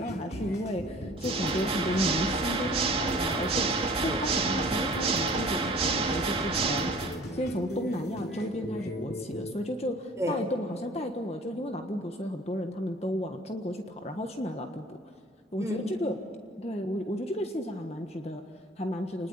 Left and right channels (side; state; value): both; normal; correlation 0.48